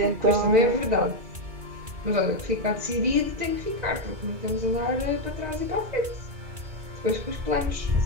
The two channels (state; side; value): late; left; 2.2 ms